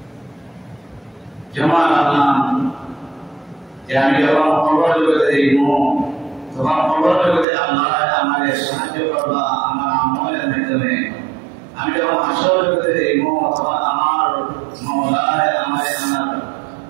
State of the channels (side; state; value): left; drops out; at 7.5 s